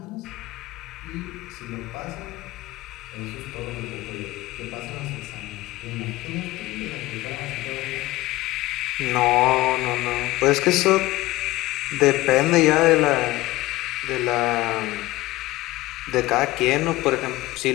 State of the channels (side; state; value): right; quieter; 18.4 dB